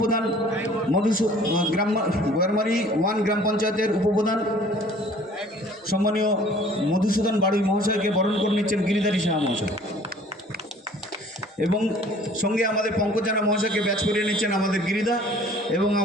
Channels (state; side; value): normal; both; correlation 0.52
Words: বয়ারমারি 1 গ্রাম পঞ্চায়েতের উপপ্রধান সম্মানীয় মধুসূদন বাড়ুই মহাশয়কে বরণ করে নিচ্ছেন গিরিধারী সাহা মহাশয়। এবং সঙ্গে আমাদের পঙ্কজ জানা মহাশয়কে ব্যাচ করিয়ে নিচ্ছেন আমাদের গিরিদা এবং